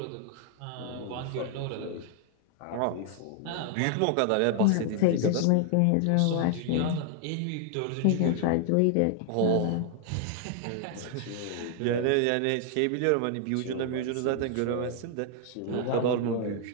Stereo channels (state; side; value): different; both; correlation 0.00